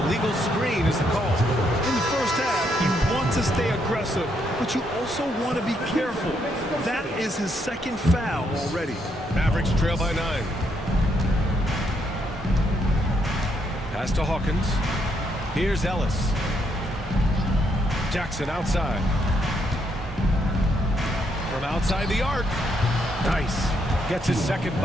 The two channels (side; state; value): both; normal; correlation 0.75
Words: illegal screen is the call. In the first half, you want to stay aggressive, but you also want to be careful. That is his second foul already. Mavericks trail by 9. Pass to Hawkins. Here's Ellis. Jackson outside. From outside the arc. Nice. Gets his second